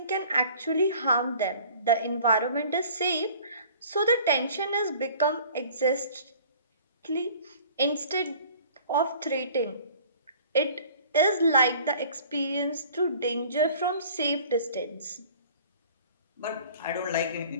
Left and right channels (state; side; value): inverted; both; correlation -0.49